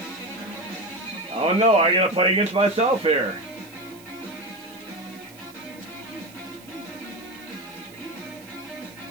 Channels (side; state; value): right; noise; hiss, 22 dB below the sound